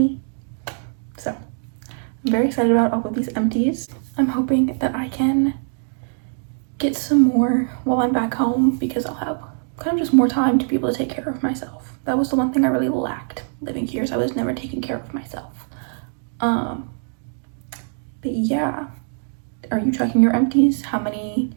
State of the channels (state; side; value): silent; left; 64 dB below the other